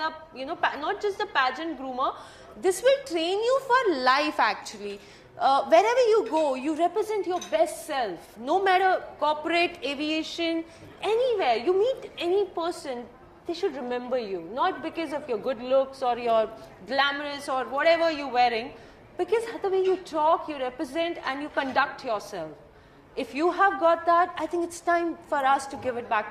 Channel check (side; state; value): both; identical; correlation 1.00